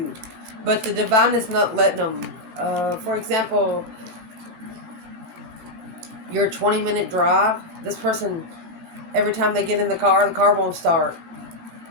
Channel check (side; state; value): left; late; 17 ms